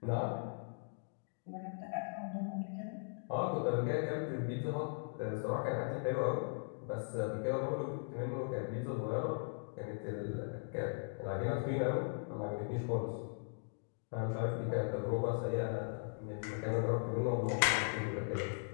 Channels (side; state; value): right; silent; digital silence